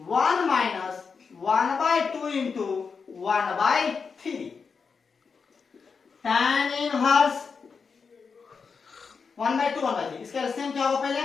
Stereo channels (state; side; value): quieter; right; 5.4 dB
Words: 1 minus 1/2 into 1/3। tan inverse 1/2 1/3, इसका एलसीएम क्या होगा, पहले